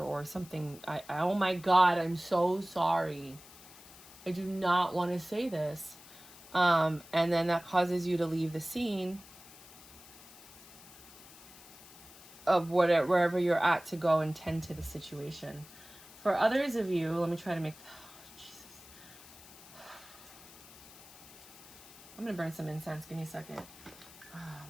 something. Oh my God, I'm so sorry. I do not want to say this. And then that causes you to leave the scene of wherever you're at to go and tend to the situation. For others of you, let me try to make... Oh, Jesus. I'm going to burn some incense. Give me a second. Oh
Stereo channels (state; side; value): noise; left; hiss, 19 dB below the sound